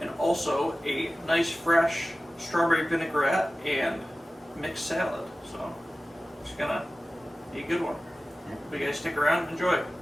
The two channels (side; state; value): both; normal; correlation 0.96